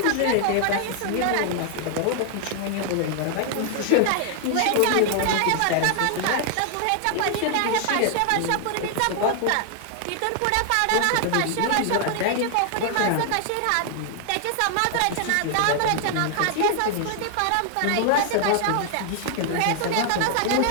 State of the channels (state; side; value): different; both; correlation 0.00